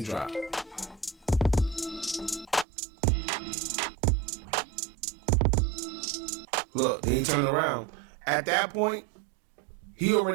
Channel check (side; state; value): left; drops out; at 2.7 s